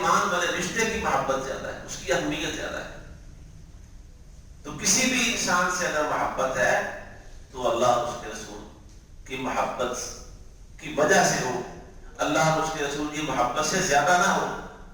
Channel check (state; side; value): identical; both; correlation 1.00